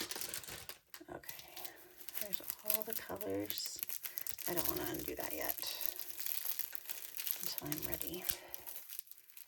Okay, there's all the colors. I don't want to undo that yet until I'm ready.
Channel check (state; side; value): identical; both; correlation 1.00